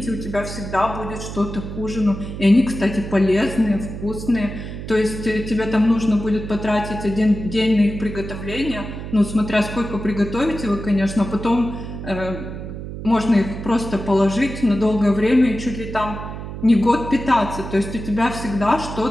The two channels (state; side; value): noise; right; hum, 9 dB below the sound